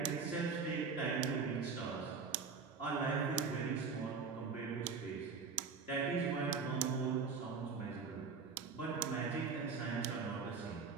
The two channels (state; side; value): quieter; left; 5.2 dB